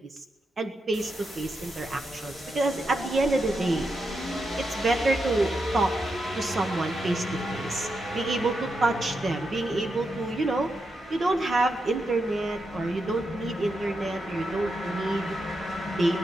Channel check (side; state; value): both; normal; correlation 0.85